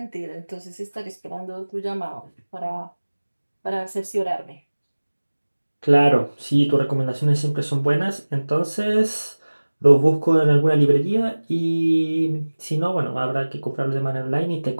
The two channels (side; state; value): both; inverted; correlation -1.00